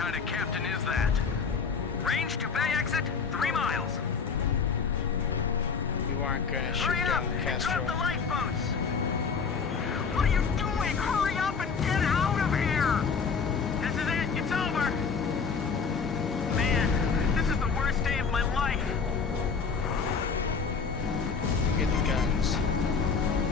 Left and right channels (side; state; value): right; quieter; 5.6 dB